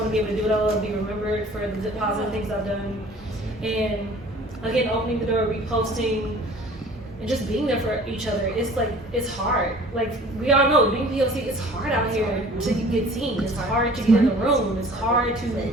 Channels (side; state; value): both; normal; correlation 0.48